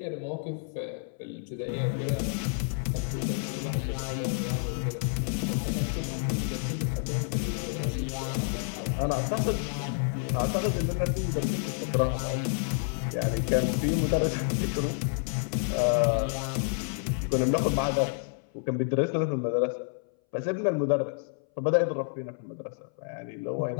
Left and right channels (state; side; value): silent; right; 58 dB below the other